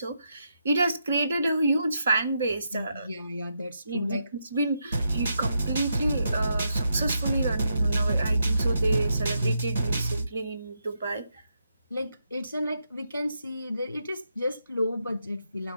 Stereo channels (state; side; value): inverted; both; correlation -0.82